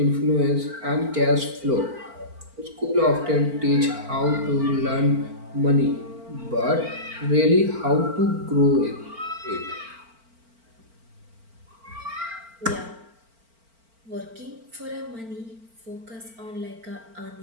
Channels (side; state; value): left; late; 4.4 ms